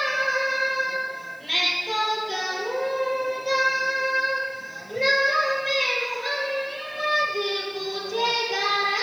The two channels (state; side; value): noise; right; hiss, 29 dB below the sound